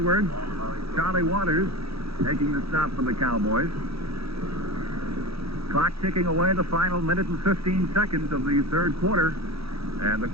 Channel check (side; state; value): left; late; 0.77 ms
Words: Charlie Waters taking the stop for the Cowboys. Clock ticking away, the final minute and 15 seconds of the third quarter. And the